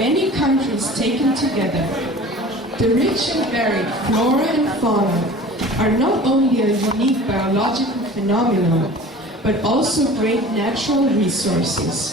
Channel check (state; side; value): normal; both; correlation 0.42